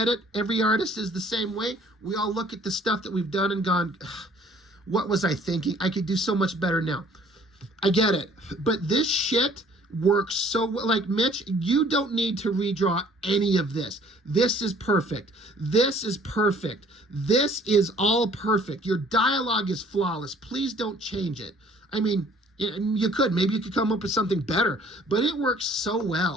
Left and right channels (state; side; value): normal; both; correlation 0.56